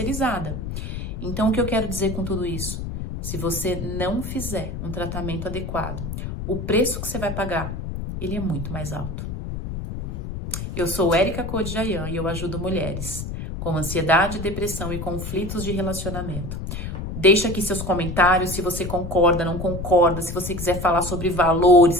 Então, o que eu quero dizer com tudo isso? Se você não fizer um tratamento adequado, o preço que você vai pagar, ele é muito mais alto. Eu sou Érica Codjayan e eu ajudo mulheres com ansiedade, depressão e conflitos de relacionamento. Deixa aqui seus comentários, se você concorda, não concorda, se você quiser falar sobre valores,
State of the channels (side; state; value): left; noise; rumble, 6 dB below the sound